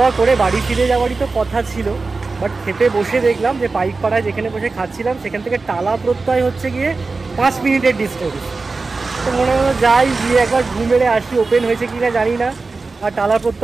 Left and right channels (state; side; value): quieter; left; 3.9 dB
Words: করে বাড়ি ফিরে যাওয়ারই তো কথা ছিল, বাট খেতে বসে দেখলাম যে পাইকপাড়ায় যেখানে বসে খাচ্ছিলাম সেখান থেকে টালা প্রত্যয় হচ্ছে গিয়ে 5 মিনিটের ডিস্টেন্স। তো মনে হলো যাই গিয়ে একবার ঘুম মেরে আসি, ওপেন হয়েছে কিনা জানি না, আর টালা